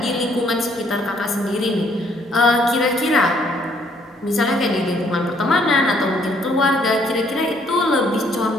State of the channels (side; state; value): both; normal; correlation 0.66